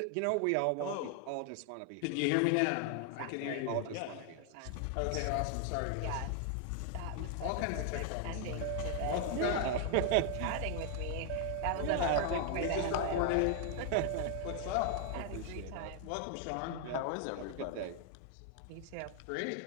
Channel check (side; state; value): both; different; correlation 0.00